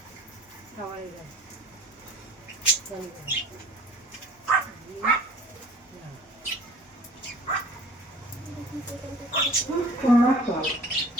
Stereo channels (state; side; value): normal; both; correlation 0.48